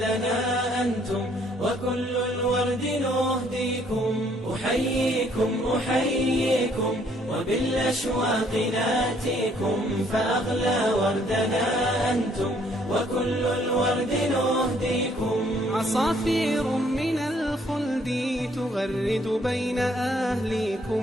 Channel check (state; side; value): normal; both; correlation 0.65